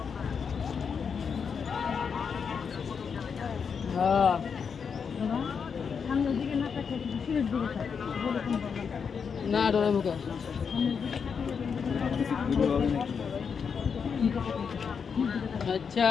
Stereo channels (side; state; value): right; quieter; 6.3 dB